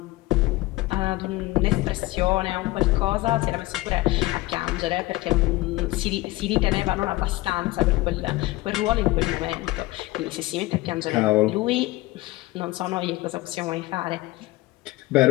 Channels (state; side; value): quieter; right; 19.2 dB